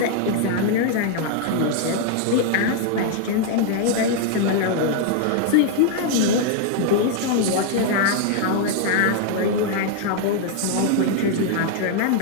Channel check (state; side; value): different; both; correlation 0.00